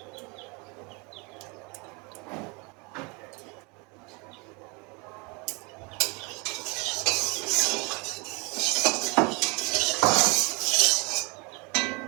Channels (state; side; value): quieter; left; 29.7 dB